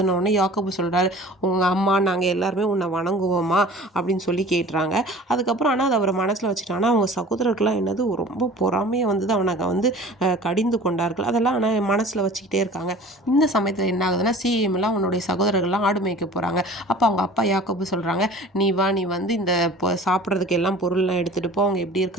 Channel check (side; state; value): both; normal; correlation 0.43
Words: உடனே யாக்கோபு சொல்கிறாரு, உங்கள் அம்மா நாங்கள் எல்லாருமே உன்னை வணங்குவோமா அப்படின்னு சொல்லி கேட்டுறாங்க. அதுக்கப்புறம் ஆனால் அதை அவர் மனசில் வச்சுட்டாங்கன்னா அவங்க சகோதரர்கள்லாம் என்னது ரொம்ப பொறாமையை அவனை கடிந்து கொண்டார்கள். அதெல்லாம் ஆனால் மனசில் வச்சுக்கிட்டே இருக்காங்க. இந்த சமயத்தில் என்ன ஆகுதுன்னா, சிஎம்லாம் அவனுடைய சகோதரர்கள்லாம் ஆடு மேய்க்க போகிறாங்க. அப்போ அவங்க அப்பா யாக்கோபு சொல்கிறாங்க, நீ வா, நீ இந்த சாப்பிட்றதுக்கு எல்லாம் பொருள்லாம் எடுத்துகிட்டு போ, அவங்க எப்படி